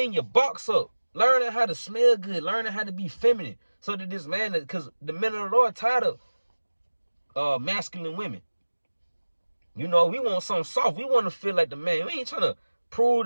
your box up, learning how to smell good, learning how to be feminine, so that this man, because the men of the Lord tired of masculine women. You know, we want something soft. We want to feel like the man. We ain't trying to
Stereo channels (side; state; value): both; inverted; correlation -1.00